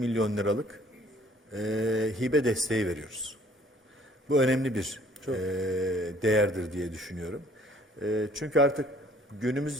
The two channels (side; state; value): both; normal; correlation 0.58